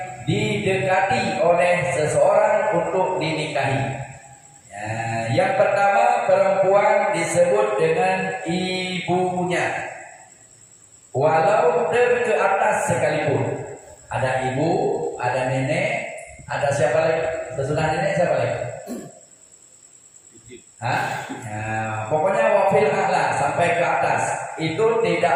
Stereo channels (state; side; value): identical; both; correlation 1.00